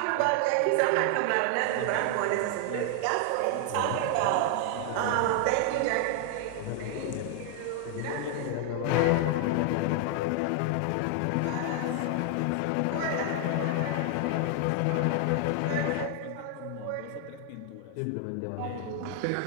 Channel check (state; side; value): different; both; correlation 0.00